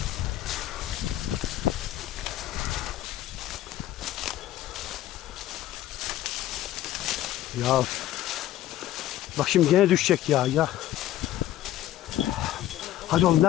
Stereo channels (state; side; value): quieter; right; 13.5 dB